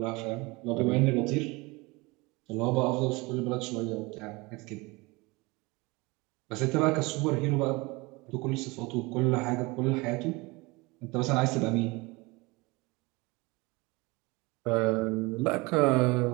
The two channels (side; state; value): left; quieter; 24.5 dB